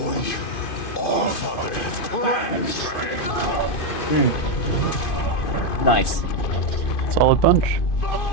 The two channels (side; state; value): right; late; 2.5 ms